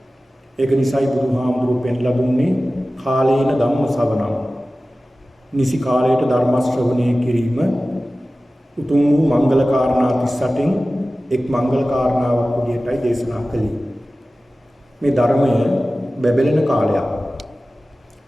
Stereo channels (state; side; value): normal; both; correlation 0.96